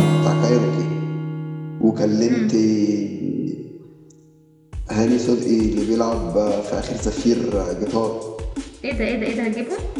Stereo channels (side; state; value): both; identical; correlation 1.00